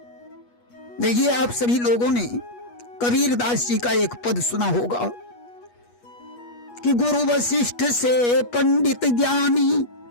देखिए, आप सभी लोगों ने कबीर दास जी का एक पद सुना होगा कि गुरु वशिष्ठ से पंडित ज्ञानी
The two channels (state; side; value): late; right; 8.3 ms